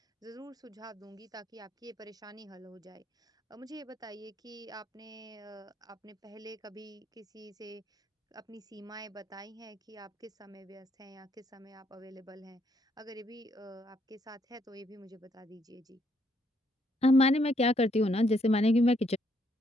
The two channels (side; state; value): both; normal; correlation 0.72